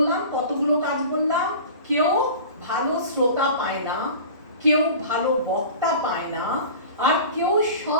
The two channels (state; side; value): inverted; both; correlation -0.38